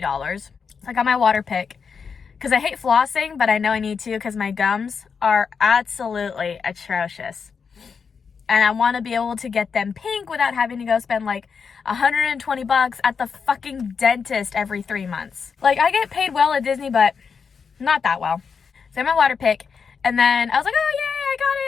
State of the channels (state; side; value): quieter; right; 5.9 dB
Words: So I got my water pick. because I hate flossing, but I know I need to because my gums are absolutely atrocious. And I want to be able to get them pink without having to go spend like $120 at the fucking dentist every 3 months. Like, I get paid well at Disney, but not that well. So I had my water pick, and then I was like, oh yay, I got